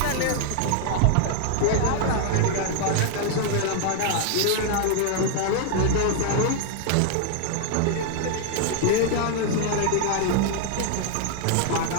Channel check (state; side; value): different; both; correlation 0.00